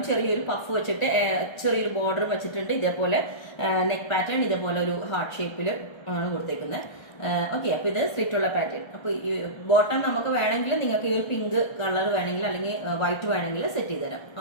ചെറിയൊരു പഫ് വെച്ചിട്ട് ചെറിയൊരു ബോർഡർ വെച്ചിട്ടുണ്ട്. ഇതേപോലെ നെക്ക് പാറ്റേൺ ഇതേപോലെ ഒരു ഹാർട്ട് ഷേപ്പിൽ ആണ് കൊടുത്തേക്കുന്നത്. ഓക്കെ, അപ്പൊ ഇത് സ്ലിറ്റ് ഉള്ള പാറ്റേൺ. അപ്പൊ ഈ ബോട്ടം നമുക്ക് വേണമെങ്കിൽ നിങ്ങൾക്ക് ഈ ഒരു പിങ്ക് കളർ വേണമെങ്കിൽ അല്ലെങ്കിൽ വൈറ്റ് വേണമെങ്കിൽ സെറ്റ് ചെയ്ത് തരാം.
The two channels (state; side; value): late; right; 1.3 ms